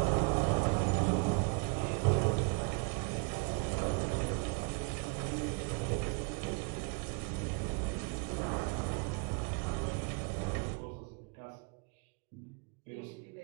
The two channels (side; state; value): left; quieter; 35.0 dB